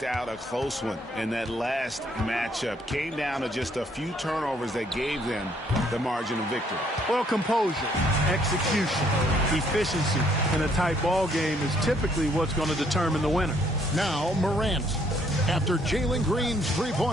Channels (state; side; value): normal; both; correlation 0.66